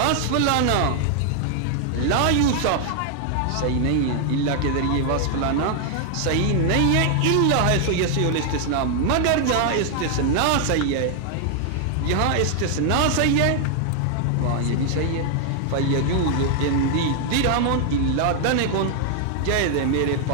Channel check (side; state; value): both; different; correlation 0.00